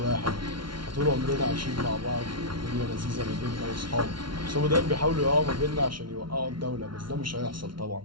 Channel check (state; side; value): late; left; 0.73 ms